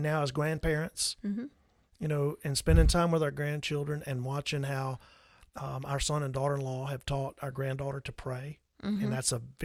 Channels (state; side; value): identical; both; correlation 1.00